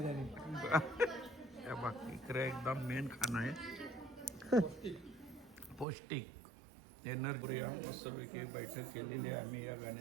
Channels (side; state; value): left; drops out; at 5.9 s